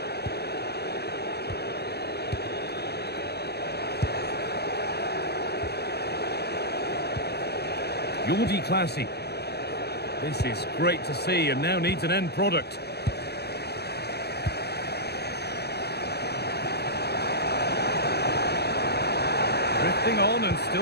Jordi Classy. This is great to see and now needs an end product. Drifting on and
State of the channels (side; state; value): right; late; 0.48 ms